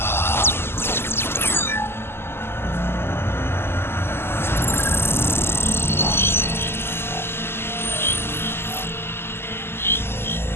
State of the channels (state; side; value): late; right; 0.12 ms